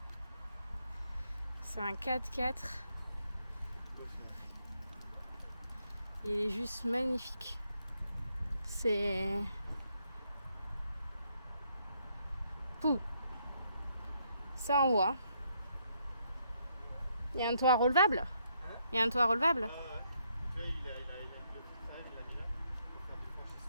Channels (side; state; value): both; inverted; correlation -0.74